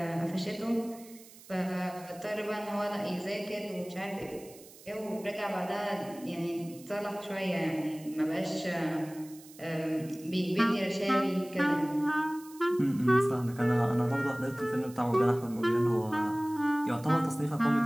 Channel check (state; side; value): noise; right; hiss, 21 dB below the sound